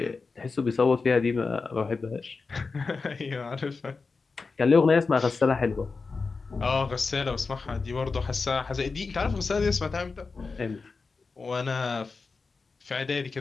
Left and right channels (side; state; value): right; quieter; 4.4 dB